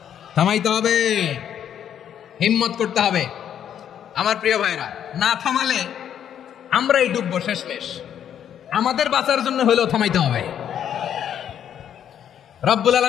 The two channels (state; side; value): quieter; right; 9.5 dB